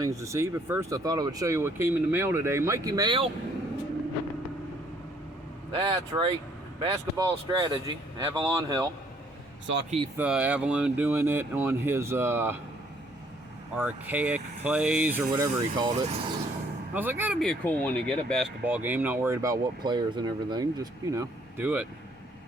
to see. But first I thought I would show you what came in the mail today. Mikey mail. That's right, basketball strategy, Avalon Hill. Saw Keith Avalon doing it on his archaic plays or whatever he called it. I was like, that'd be a cool one to get, a basketball game, not worried about what players and everything, just, you know, do it.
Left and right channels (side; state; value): both; normal; correlation 0.64